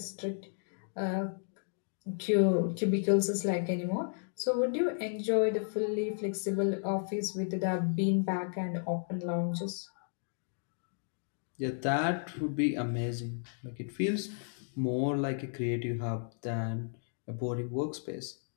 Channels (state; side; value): silent; right; digital silence